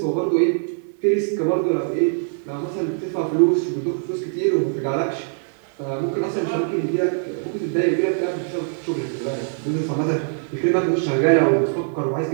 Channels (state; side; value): silent; left; digital silence